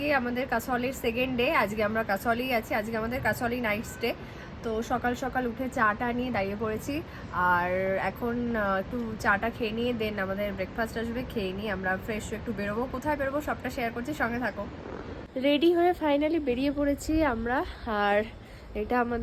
আমাদের কাসলের সেকেন্ড ডে, আজকে আমরা কাসলেই আছি, আজকে আমাদের কাসলেই নাইট স্টে। তো সকাল সকাল উঠে চাটা নিয়ে দাঁড়িয়ে পড়েছি আর এখন একটু চাটা খেয়ে নিয়ে দেন আমাদের ব্রেকফাস্ট আসবে, খেয়ে নিয়ে আমরা ফ্রেশ একটু বেরোবো। কোথায় বেরোবো সবটা শেয়ার করছি, সঙ্গে থাকো। রেডি হয়ে ফাইনালি বেরিয়ে পড়েছি আমরা। আর এটা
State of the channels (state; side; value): identical; both; correlation 1.00